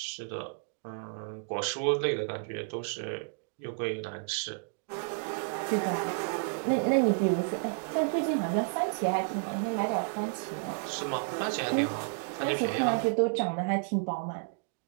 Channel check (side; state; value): left; silent; 57 dB below the other